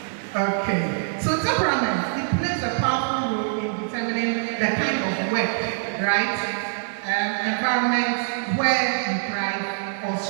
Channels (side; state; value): left; silent; digital silence